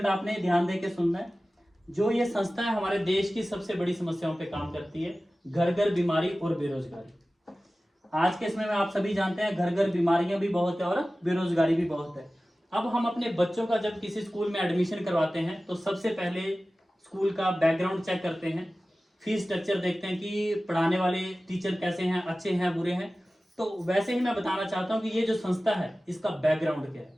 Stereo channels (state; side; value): normal; both; correlation 0.96